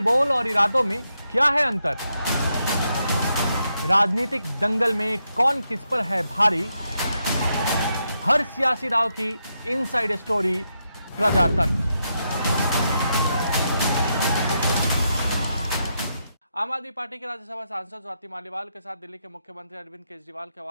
बोल और इरादों में क्या है अंतर? राजनीतिक दंगल में कौन किस पर है भारी? हर सियासी दांव की इनसाइड स्टोरी प्रजातंत्र। आम आदमी पार्टी के राज्यसभा सांसद स्वाति मालीवाल के साथ दिल्ली के मुख्यमंत्री अरविंद केजरीवाल के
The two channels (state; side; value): inverted; both; correlation -0.82